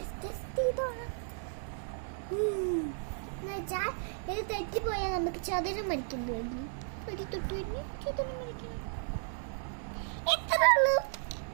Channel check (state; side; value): silent; left; digital silence